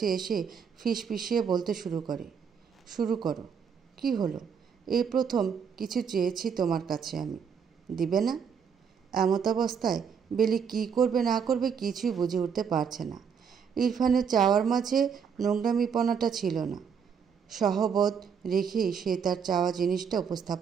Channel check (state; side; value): quieter; left; 6.8 dB